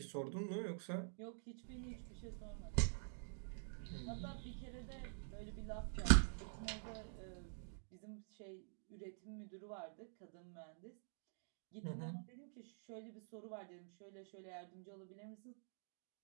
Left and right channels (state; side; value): silent; left; digital silence